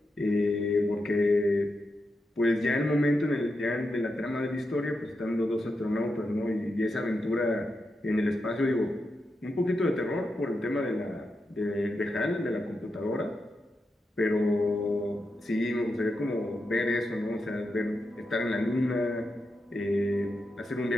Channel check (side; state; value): both; normal; correlation 0.87